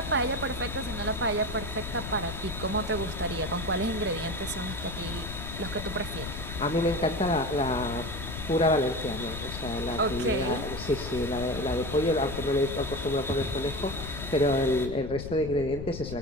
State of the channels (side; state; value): left; noise; rumble, 8 dB below the sound